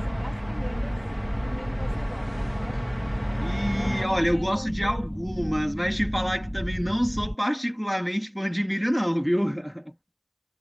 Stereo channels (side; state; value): both; identical; correlation 1.00